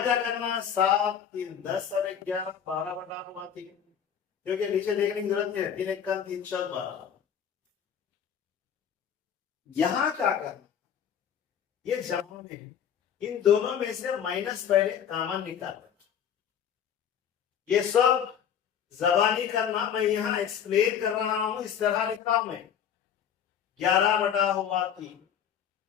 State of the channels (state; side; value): quieter; right; 8.4 dB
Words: क्या करना, 7 3 10 और 11 12/3, क्योंकि नीचे देखने की जरूरत नहीं है। 3 1 3 4 12। यहां क्या करना, ये जमा में है, इन दोनों में से माइनस पहले कॉमन निकालना। ये सब जबानी करना, मैं यहां एक्सप्लेन कर रहा हूं, इस तरह लिख रहा हूं मैं 11 बटा हुआ 3।